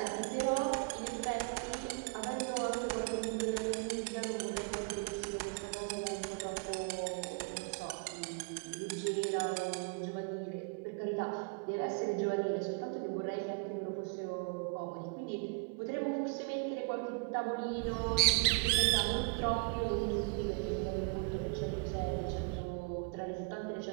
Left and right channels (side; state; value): left; quieter; 32.9 dB